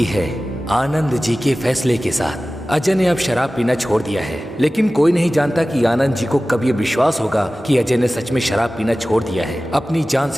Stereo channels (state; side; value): normal; both; correlation 0.96